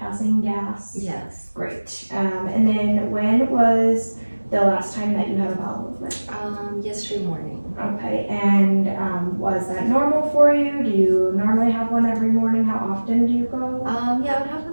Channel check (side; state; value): both; inverted; correlation -1.00